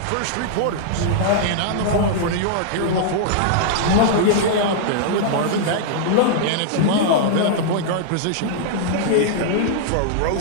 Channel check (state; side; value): different; both; correlation -0.01